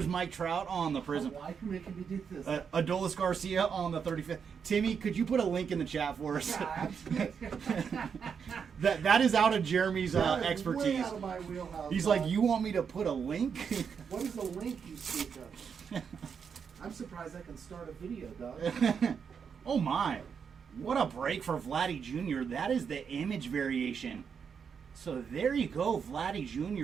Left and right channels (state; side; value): quieter; left; 6.6 dB